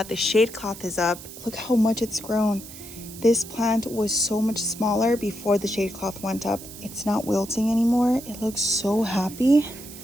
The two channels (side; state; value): right; noise; hiss, 15 dB below the sound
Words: the shade cloth is up, look how much it's grown. This plant was so much smaller before the shade cloth went up. It's not wilting anymore. It looks so happy.